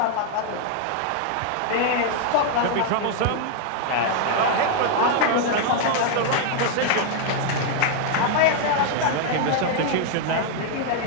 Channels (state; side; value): different; both; correlation 0.00